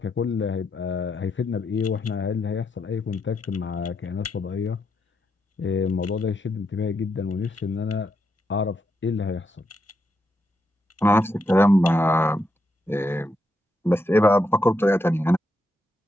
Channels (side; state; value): both; normal; correlation 0.81